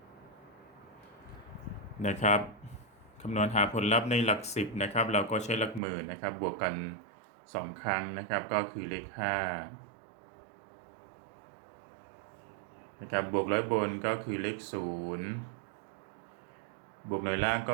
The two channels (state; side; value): drops out; left; at 5.8 s